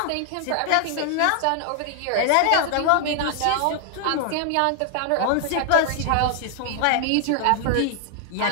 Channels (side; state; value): both; different; correlation 0.00